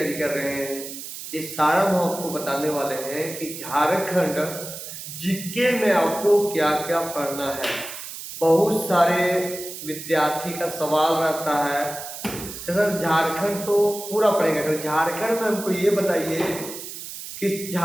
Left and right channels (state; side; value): noise; right; hiss, 10 dB below the sound